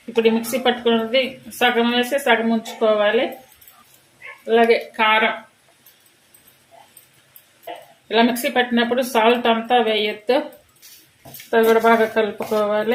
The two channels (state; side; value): identical; both; correlation 1.00